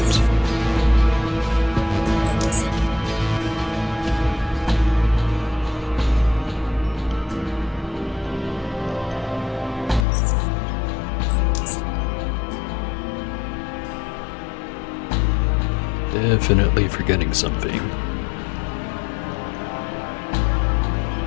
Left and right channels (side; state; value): right; drops out; at 10.1 s